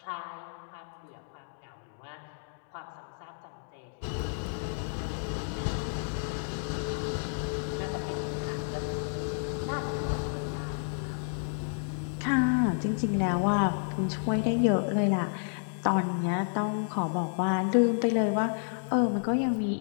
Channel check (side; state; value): right; silent; digital silence